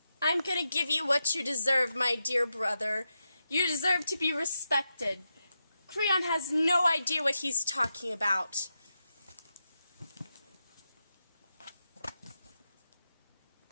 I'm gonna give you what you deserve, my dear brother. You deserve to be respected. Creon has no idea what he's talking about.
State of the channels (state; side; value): inverted; both; correlation -0.88